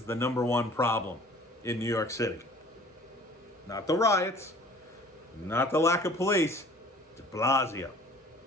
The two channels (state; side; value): normal; both; correlation 0.49